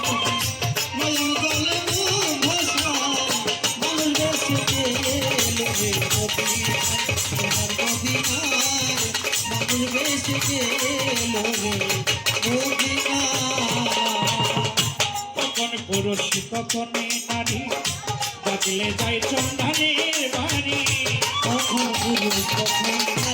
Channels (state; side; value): identical; both; correlation 1.00